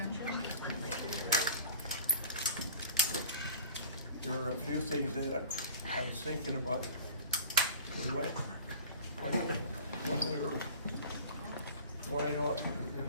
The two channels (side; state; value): both; inverted; correlation -0.43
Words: There are a few things that I was thinking about. We went, when we were going on in